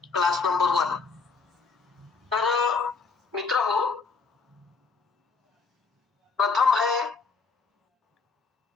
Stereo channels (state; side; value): quieter; right; 4.9 dB